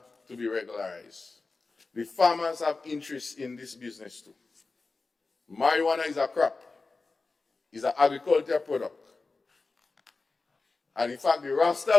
to be regularized. The farmers have interest in this business too. Marijuana is a crop, is an agricultural product. And in fact, the Rasta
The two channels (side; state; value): right; quieter; 3.9 dB